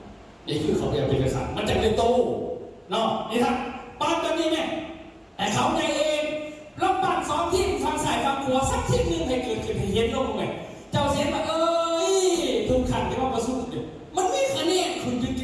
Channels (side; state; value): both; identical; correlation 1.00